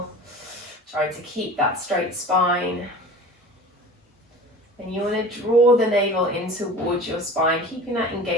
Try to keep that straight spine. And you want to draw the navel in towards your spine, keeping that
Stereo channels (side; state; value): both; normal; correlation 0.38